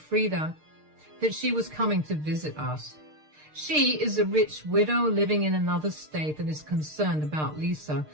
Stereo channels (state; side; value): late; left; 6.6 ms